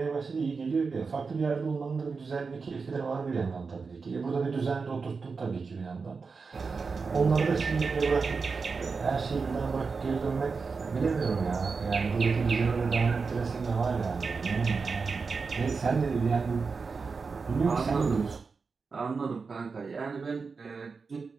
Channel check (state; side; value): quieter; left; 4.8 dB